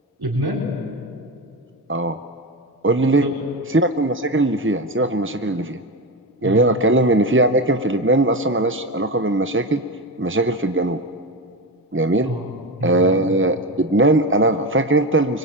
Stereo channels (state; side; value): normal; both; correlation 0.18